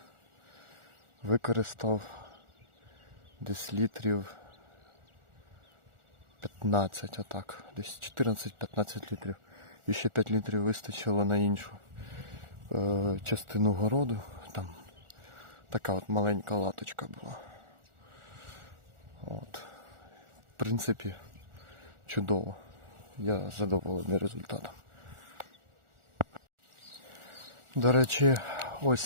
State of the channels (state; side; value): late; left; 1.4 ms